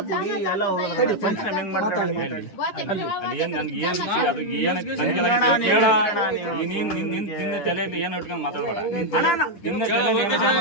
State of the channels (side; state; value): right; late; 9.9 ms